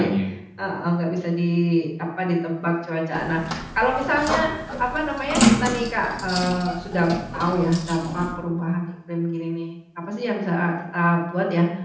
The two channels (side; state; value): both; identical; correlation 1.00